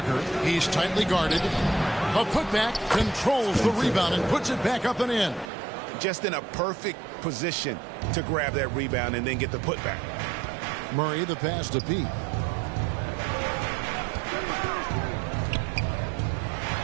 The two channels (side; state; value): left; drops out; at 5.5 s